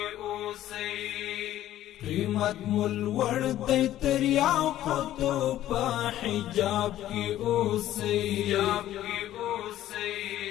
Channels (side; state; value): right; quieter; 13.2 dB